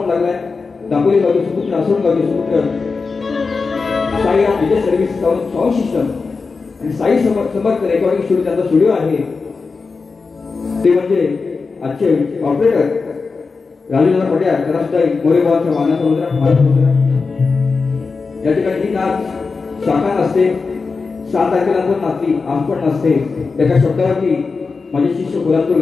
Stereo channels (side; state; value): right; quieter; 4.5 dB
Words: लागलाय. दापोली गावचे सुपुत्र, आसोड गावचे सुपुत्र साई विजय सर्व्हिस साऊंड सिस्टम आणि साई समर्थ रेकॉर्डिंग स्टुडिओ, त्यांचा स्टुडिओ आहे. ते म्हणजे आजचे ऑपरेटर राजूदादा पट्याळ, त्यांना सुद्धा मोरे बुवांचा मानाचा मुद्रा, मानाचा मुद्रा. या ठिकाणी ही नाच शाखा नसते, 7 तारखेला पण नाचली, आज पण नसते. एका शब्दावरती माझे शिष्य कोल्हापूर